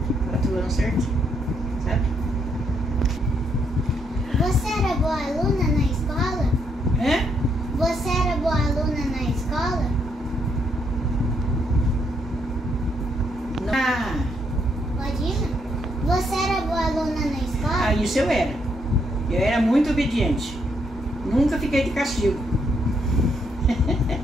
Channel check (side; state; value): both; normal; correlation 0.74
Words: 4 anos certinho, sabe? Você era boa aluna na escola? Você era boa aluna na escola? Pode ir? Você era boa aluna na escola? Isso eu era. Eu era muito obediente. Nunca fiquei de castigo.